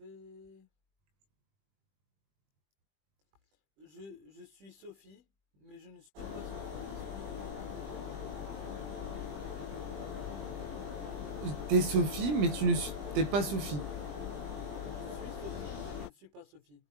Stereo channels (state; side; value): late; left; 20 ms